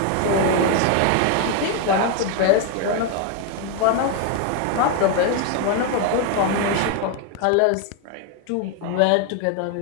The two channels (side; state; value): both; different; correlation 0.01